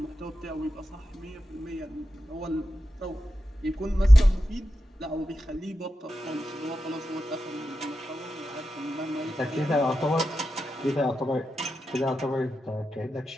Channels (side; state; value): both; normal; correlation 0.90